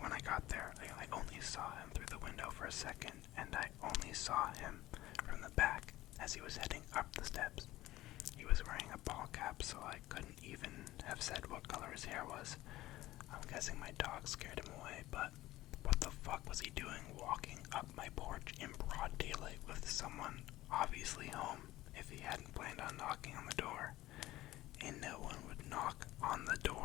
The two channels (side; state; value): right; quieter; 16.5 dB